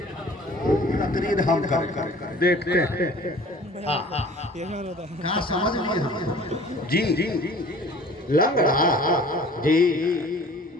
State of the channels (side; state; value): both; normal; correlation 0.48